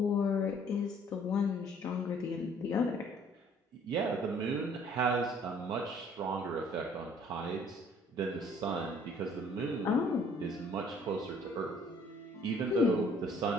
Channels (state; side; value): normal; both; correlation 0.57